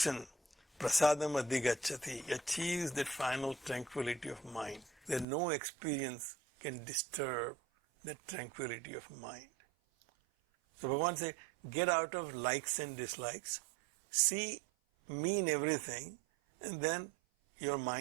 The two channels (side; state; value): left; drops out; at 5.2 s